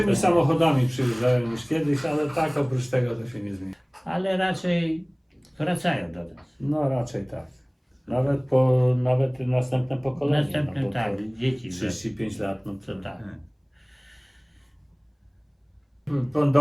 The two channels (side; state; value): both; identical; correlation 1.00